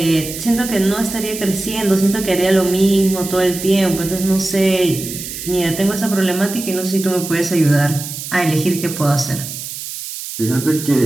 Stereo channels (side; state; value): right; noise; hiss, 9 dB below the sound